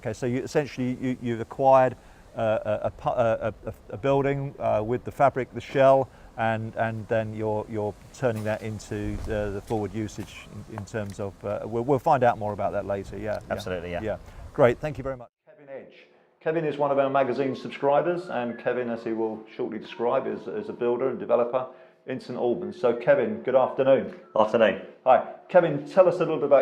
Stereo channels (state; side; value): identical; both; correlation 1.00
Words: so you've acquired a building with the fabric, the shell, and then you're turning that into the forward usage in terms of. We'll find out more about that later. Yeah. Absolutely. Yeah. Great. Thank you very much, Kevin Edge. Kevin is one of our magazine subscribers, and Kevin, as he will shortly describe, is a builder and developer in St Albans. So Kevin, good afternoon. Afternoon. Hi. Kevin, tell us a little bit